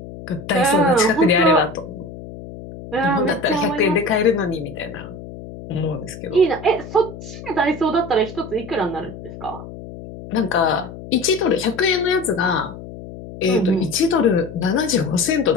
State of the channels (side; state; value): left; noise; hum, 13 dB below the sound